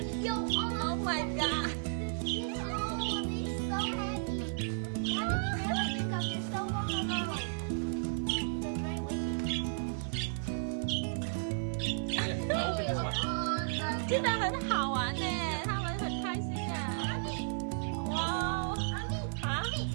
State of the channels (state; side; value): silent; left; digital silence